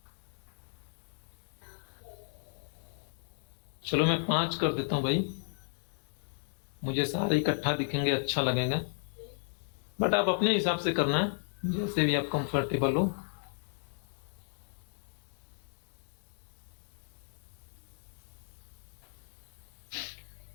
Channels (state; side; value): silent; right; digital silence